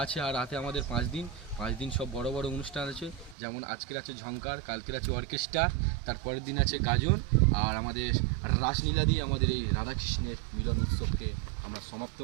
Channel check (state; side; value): drops out; left; at 3.4 s